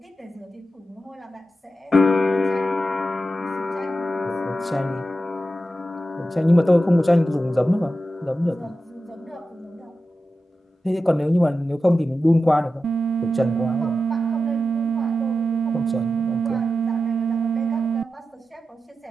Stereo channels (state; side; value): normal; both; correlation 0.91